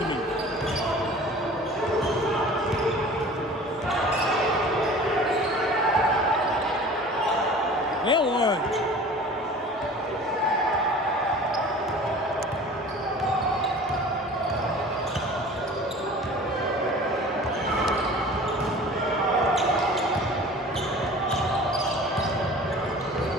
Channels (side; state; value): both; normal; correlation 0.43